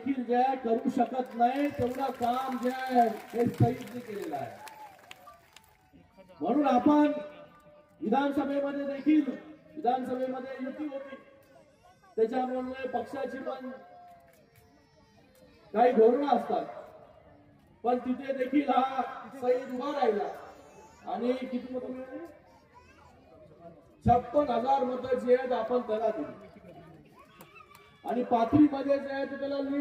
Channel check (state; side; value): identical; both; correlation 1.00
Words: जे करू शकत नाही तेवढं काम जे आहे हे सईदने केलेलं आहे. म्हणून आपण विधानसभेमध्ये देखील, विधानसभेमध्ये युती होती, त्याच्यामुळे पक्षाची पण काही धोरणं असतात, पण तिथे देखील हा सईद उभा राहिला आणि किती मतं मिळाली? 56,000 मतं जी आहेत आपण त्याला दिली आणि पाथरीमध्ये जे आहे त्याला